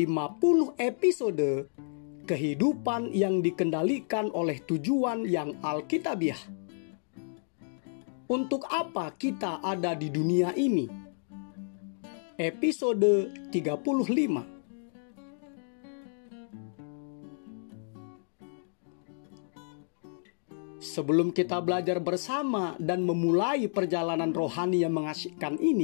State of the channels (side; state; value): right; silent; digital silence